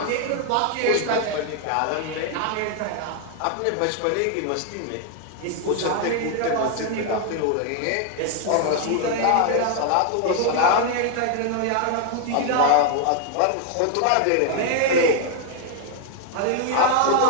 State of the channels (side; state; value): both; different; correlation 0.00